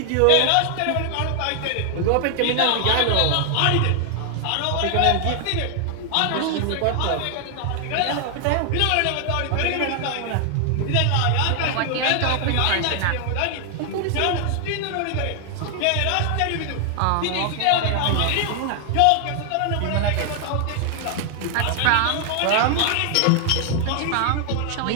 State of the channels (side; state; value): both; different; correlation 0.00